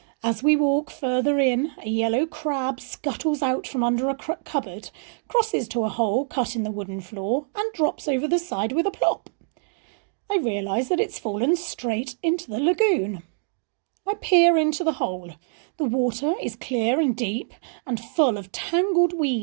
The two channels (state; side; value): silent; left; digital silence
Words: As we walk further in, a yellow crab scuttles out from under a cupboard, crosses to a hole cut in the wooden floor, and drops over the side with a plop. I realise that it's fallen straight into the lagoon. I peer into the hole. The water is clear and deep and full of tangled